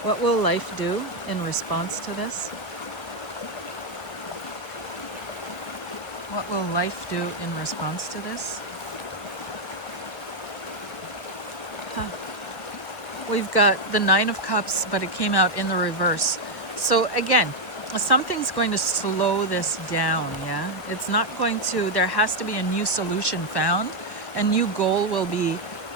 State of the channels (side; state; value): right; late; 1.1 ms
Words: What will life do in response to this? What will life do in response to this? We've got the Nine of Cups, but it came out in the reverse. So again, something's going to slow this down, yeah? It's not going to, there has to be a new solution found. A new goal will be